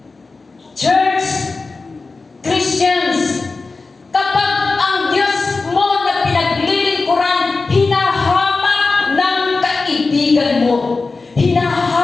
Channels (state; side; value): quieter; right; 3.9 dB